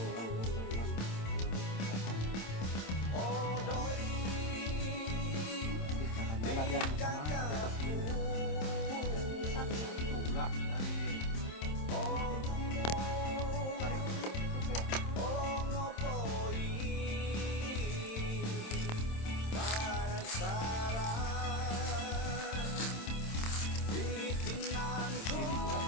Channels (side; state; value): right; late; 26 ms